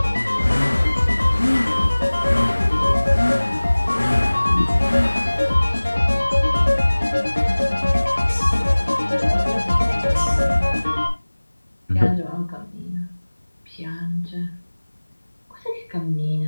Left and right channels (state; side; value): inverted; both; correlation -1.00